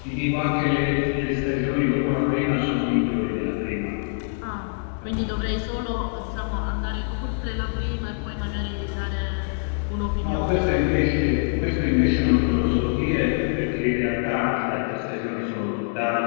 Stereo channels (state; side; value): silent; right; digital silence